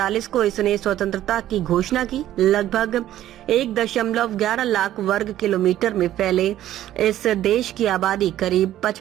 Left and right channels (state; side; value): quieter; left; 12.9 dB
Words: को इसने स्वतंत्रता की घोषणा की। लगभग 1.11 लाख वर्ग किलोमीटर में फैले इस देश की आबादी करीब